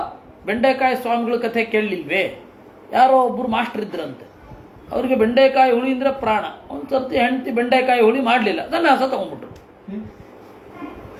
ಬೆಂಡೆಕಾಯಿ ಸ್ವಾಮಿಗಳ ಕಥೆ ಕೇಳಲಿಲ್ವೇ? ಯಾರೋ ಒಬ್ಬರು ಮಾಸ್ಟರ್ ಇದ್ರಂತೆ, ಅವರಿಗೆ ಬೆಂಡೆಕಾಯಿ ಹುಳಿ ಅಂದರೆ ಪ್ರಾಣ. ಒಂದು ಸರ್ತಿ ಹೆಂಡತಿ ಬೆಂಡೆಕಾಯಿ ಹುಳಿ ಮಾಡಲಿಲ್ಲ, ಸನ್ಯಾಸ ತಗೊಂಡ್ಬಿಟ್ರು.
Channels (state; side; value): identical; both; correlation 1.00